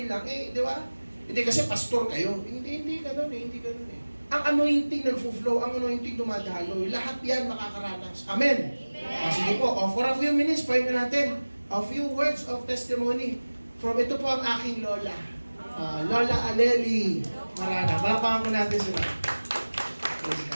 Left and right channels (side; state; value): both; inverted; correlation -1.00